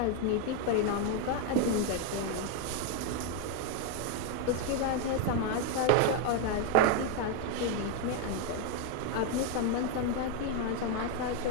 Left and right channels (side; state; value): both; different; correlation 0.01